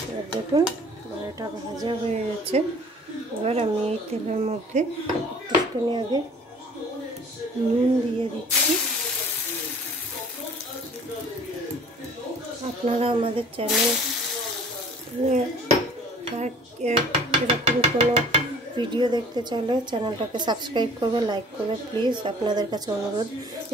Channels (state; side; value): normal; both; correlation 0.50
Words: এবার দেখুন এটা ভাজা হয়ে গেছে। এবার আমি এই তেলের মধ্যে একটুখানি আগে নুন দিয়ে দিচ্ছি। আপনারা আমাদের চ্যানেল এরকম কোনো ভিডিও দেখতে চাইলে চ্যানেলটাকে সাবস্ক্রাইব করবে, লাইক করবে প্লিজ, আপনাদের কাছে অনুরোধ।